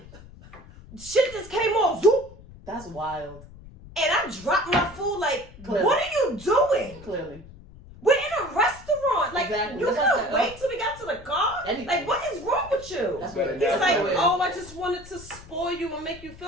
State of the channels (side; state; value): left; noise; rumble, 19 dB below the sound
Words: Shit just came off. Zoop. That's wild. And I dropped my food like, Clearly. what are you doing? Clearly. We're in a restaurant. Like, Exactly. you That's what I couldn't said. wait till we got to the car? Anything. Like, what is wrong with you? That's better what than He's that. like, oh, I just wanted to spoil you and make you